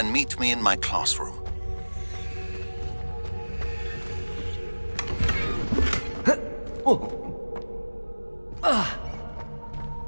meet me in my classroom.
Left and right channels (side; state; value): both; inverted; correlation -1.00